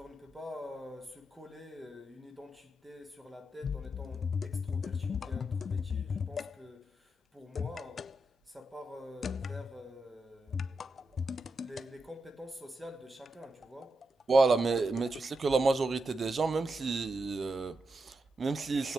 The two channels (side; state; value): both; normal; correlation 0.86